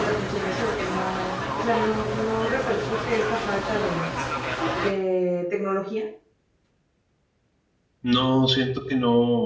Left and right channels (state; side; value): identical; both; correlation 1.00